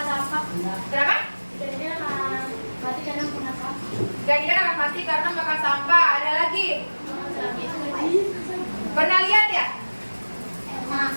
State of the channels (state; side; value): inverted; both; correlation -1.00